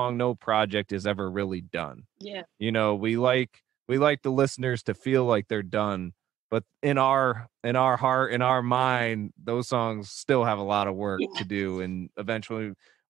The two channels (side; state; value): left; quieter; 11.9 dB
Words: no project is ever really done. Yeah, you know, we like the listeners to feel like they're done, but in our heart, in our mind, those songs still have a lot of work to do, and eventually